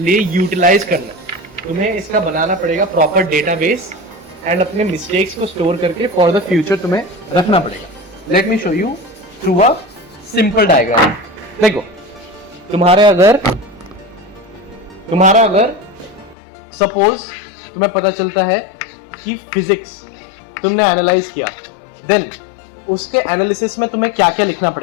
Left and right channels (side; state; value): right; drops out; at 16.4 s